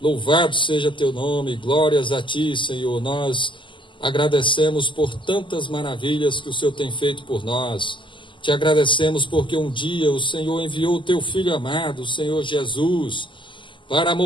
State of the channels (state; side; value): late; right; 0.24 ms